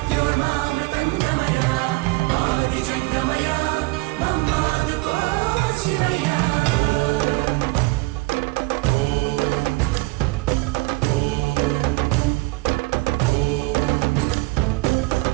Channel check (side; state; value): left; quieter; 23.6 dB